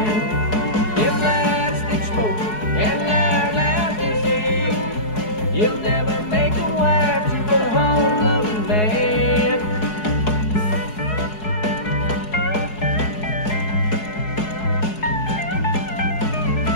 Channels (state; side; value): late; right; 4.7 ms